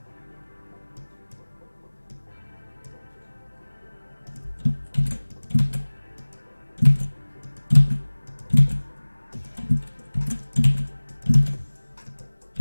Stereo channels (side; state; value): both; inverted; correlation -1.00